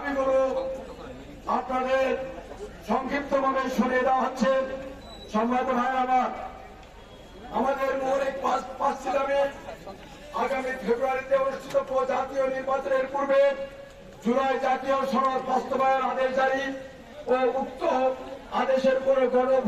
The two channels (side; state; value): both; identical; correlation 1.00